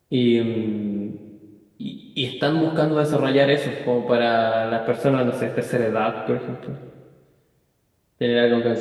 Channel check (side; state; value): both; identical; correlation 1.00